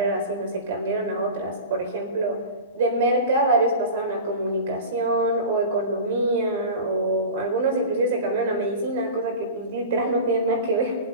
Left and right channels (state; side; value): inverted; both; correlation -0.32